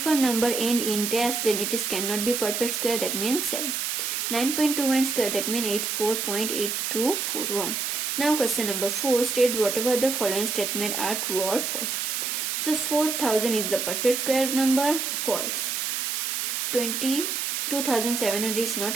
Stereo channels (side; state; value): right; noise; hiss, 1 dB below the sound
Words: a number end in dash, then it is cannot be perfect square, that means 7. 9.21 square, that means 84.8241. Now question number 4. State whatever the following statement are true or false. So 4000 is the perfect square number, false. 22,700 is not